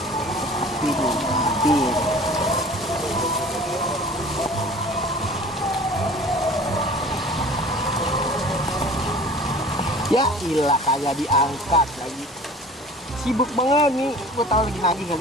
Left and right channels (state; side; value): normal; both; correlation 0.45